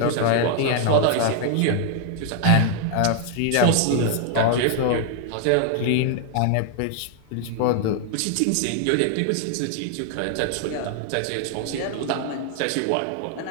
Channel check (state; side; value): different; both; correlation 0.00